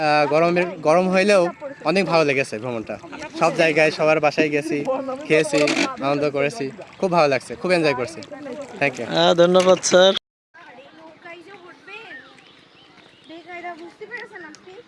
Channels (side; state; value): both; identical; correlation 1.00